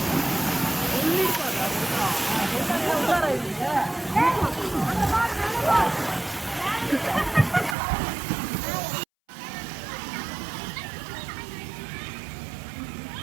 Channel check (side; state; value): left; drops out; at 7.8 s